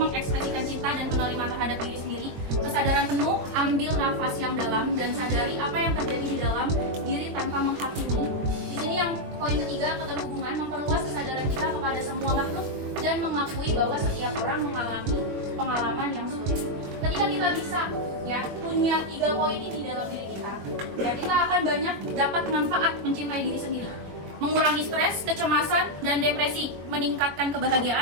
cinta dan menerima terhadap diri sendiri. Kesadaran penuh, ambil nafas yang dalam dan sadari apa yang terjadi di dalam diri tanpa menghakimi. Di sini yang poin ketiga, keterhubungan, memperluas kesadaran kita kepada semua makhluk dan mengakui bahwa setiap orang mengalami pengalaman yang sulit. Ketika kita bisa ya punya 3 poin ini dalam diri kita, ya kita akan banyak dapat manfaat mencintai diri sendiri. Mengurangi stres, kecemasan, dan depresi, meningkatkan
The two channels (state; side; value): late; left; 21 ms